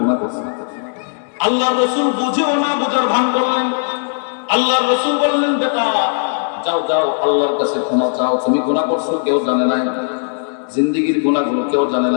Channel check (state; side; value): silent; right; digital silence